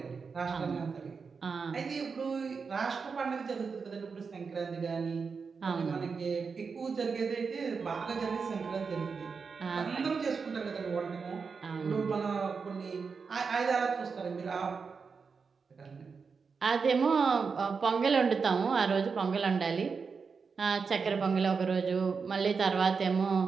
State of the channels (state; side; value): quieter; left; 5.3 dB